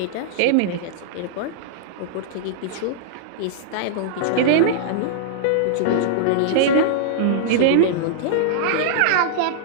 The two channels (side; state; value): both; different; correlation -0.02